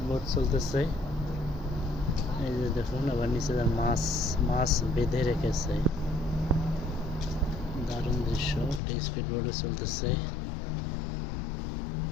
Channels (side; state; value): right; drops out; at 8.8 s